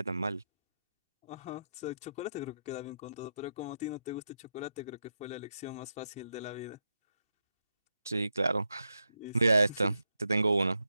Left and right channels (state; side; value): inverted; both; correlation -0.84